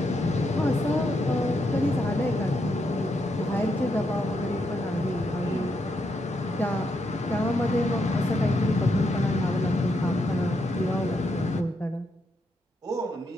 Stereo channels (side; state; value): both; normal; correlation 0.80